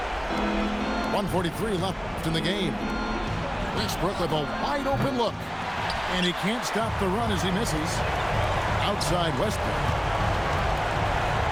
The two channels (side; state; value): both; identical; correlation 1.00